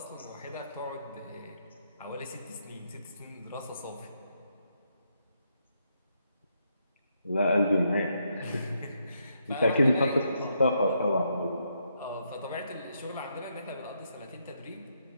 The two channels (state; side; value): inverted; both; correlation -0.78